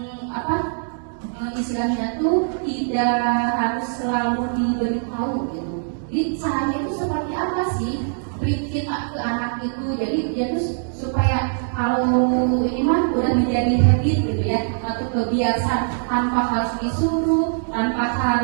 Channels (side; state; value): left; silent; digital silence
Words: istilahnya tuh tidak harus selalu diberitahu gitu. Jadi caranya itu seperti apa sih beri kita ke anak itu, jadi dia tuh supaya kalau ini mah udah menjadi habit gitu ya, atau kebiasaan tanpa harus disuruh, tanpa